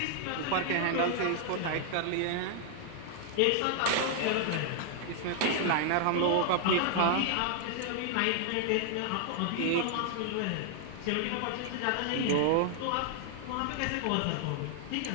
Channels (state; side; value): different; both; correlation 0.00